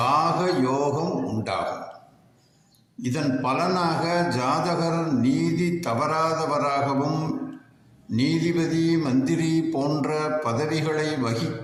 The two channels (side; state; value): both; identical; correlation 1.00